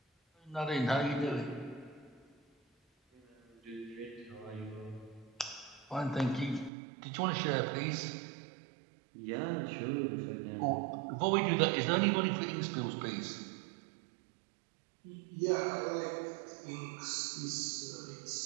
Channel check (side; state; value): left; drops out; at 6.7 s